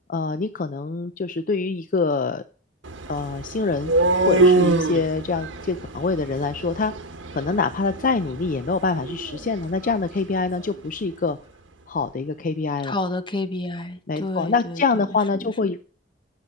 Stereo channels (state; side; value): normal; both; correlation 0.11